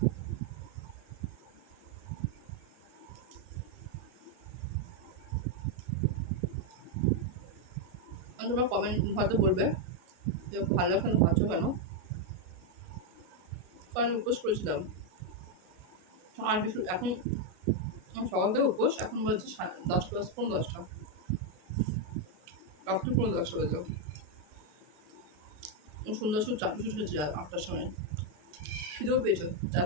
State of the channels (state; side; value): late; left; 33 ms